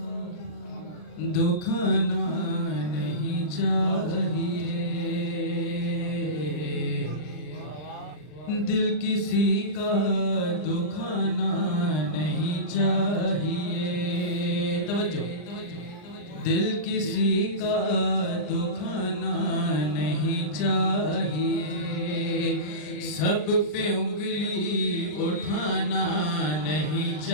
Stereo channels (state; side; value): late; right; 39 ms